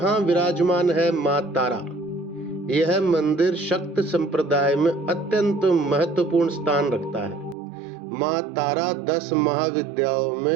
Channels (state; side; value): drops out; left; at 7.6 s